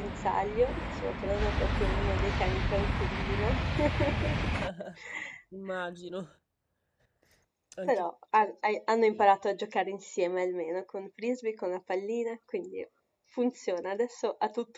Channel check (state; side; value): identical; both; correlation 1.00